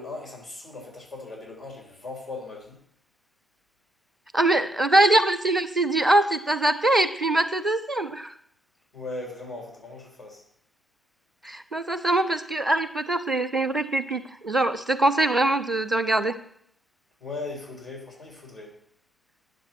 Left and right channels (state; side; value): normal; both; correlation 0.77